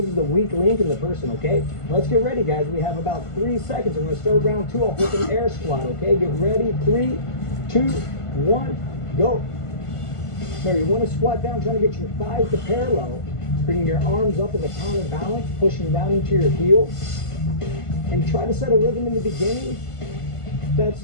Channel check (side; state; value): right; late; 1.5 ms